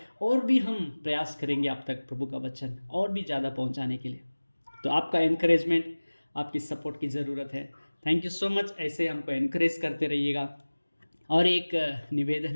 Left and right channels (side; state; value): both; inverted; correlation -1.00